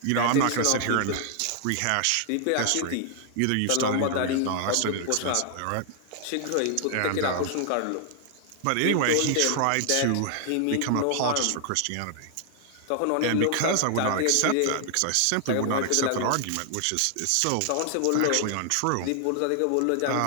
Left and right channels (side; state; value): both; different; correlation 0.00